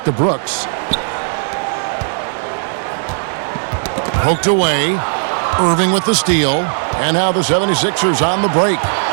to Brooks. Poked away. Irving with the steal. And now the 76ers on the break.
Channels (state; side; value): silent; left; digital silence